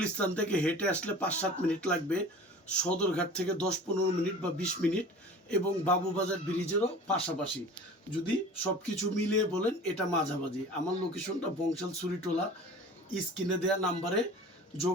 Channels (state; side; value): normal; both; correlation 0.41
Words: থেকে হেঁটে আসলে 5-7 মিনিট লাগবে, সদরঘাট থেকে 10-15 মিনিট বা 20 মিনিট, এবং বাবুবাজার ব্রিজেরও পাশাপাশি। যদি সব কিছু মিলিয়ে বলেন এটা মাঝামাঝি। আমার লোকেশনটা বংশাল সুরিটোলা। স্ক্রিনে দেওয়া নাম্বারে